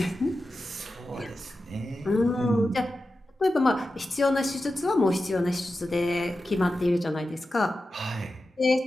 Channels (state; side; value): normal; both; correlation 0.92